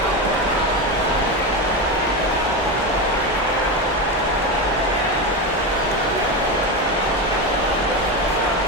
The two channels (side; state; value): both; normal; correlation 0.17